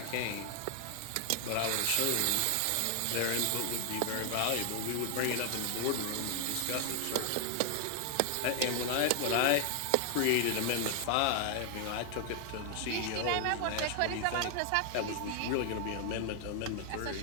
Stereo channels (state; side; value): different; both; correlation 0.00